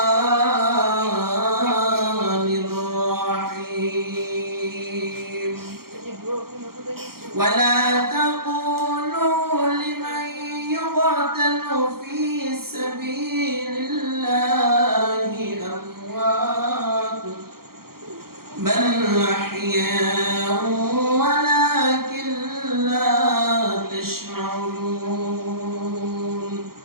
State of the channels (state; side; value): late; left; 0.93 ms